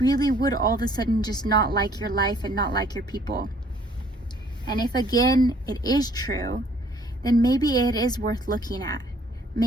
would all of a sudden just not like your life and not like your people? And if again it is true, then maybe it is worth looking at.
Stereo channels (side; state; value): both; normal; correlation 0.60